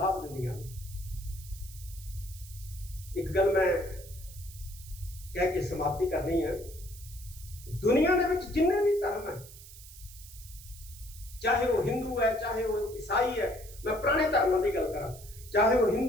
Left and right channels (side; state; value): right; noise; hiss, 17 dB below the sound